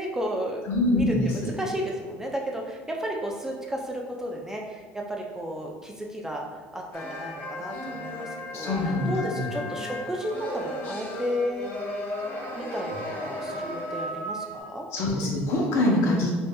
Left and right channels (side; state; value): both; normal; correlation 0.49